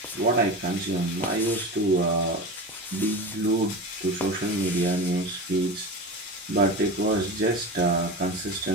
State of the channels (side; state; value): both; normal; correlation 0.27